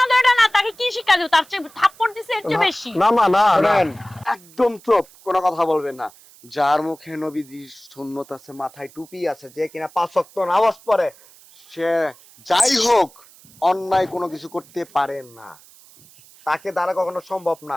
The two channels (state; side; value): noise; right; hiss, 25 dB below the sound